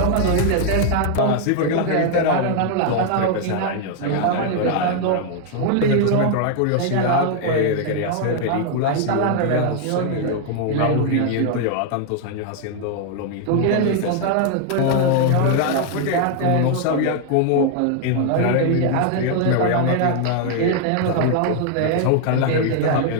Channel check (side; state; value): both; different; correlation 0.00